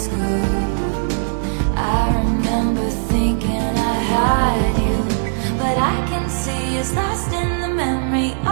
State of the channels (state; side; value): silent; left; digital silence